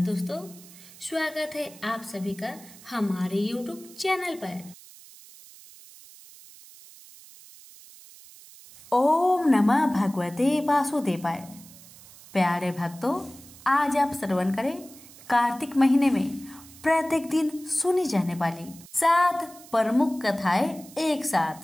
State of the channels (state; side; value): noise; right; hiss, 20 dB below the sound